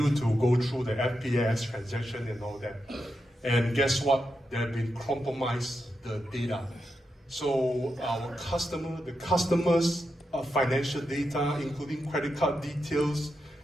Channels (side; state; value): both; normal; correlation 0.86